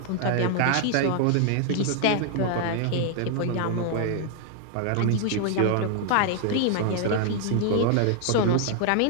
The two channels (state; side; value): different; both; correlation 0.00